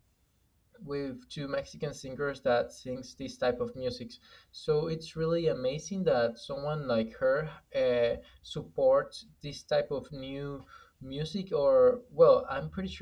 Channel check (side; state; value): both; identical; correlation 1.00